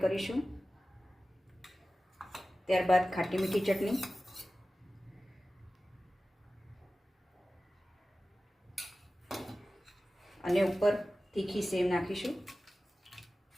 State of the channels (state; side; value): normal; both; correlation 0.95